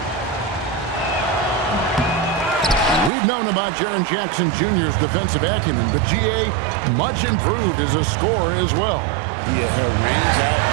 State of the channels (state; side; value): drops out; left; at 3.1 s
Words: We've known about Jaren Jackson Jr.'s defensive acumen, but GA much improved as a scorer as well. Yeah, her range out